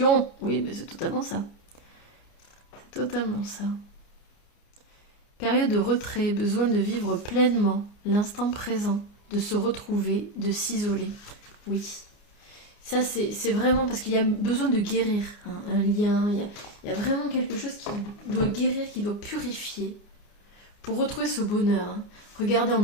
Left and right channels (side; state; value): right; late; 29 ms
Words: Oui, mais c'est totalement ça. C'est totalement ça. Période de retrait, besoin de vivre pleinement l'instant présent, de se retrouver, de s'isoler. Oui. Ça, c'est vraiment parce qu'il y a besoin de guérir un lien. Il y a vraiment quelque chose qui doit guérir, qui doit purifier pour retrouver ce bonheur. Hein. Regardez, on